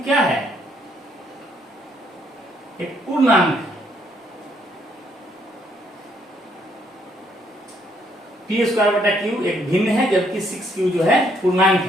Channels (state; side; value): normal; both; correlation 0.70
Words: क्या है, एक पूर्णांक है। p²/q एक भिन्न है, जबकि 6q जो है पूर्णांक